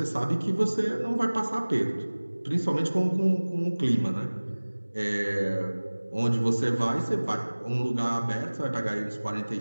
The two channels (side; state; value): both; inverted; correlation -1.00